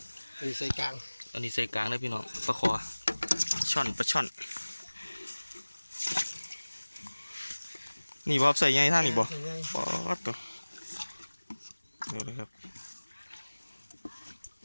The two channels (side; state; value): both; inverted; correlation -1.00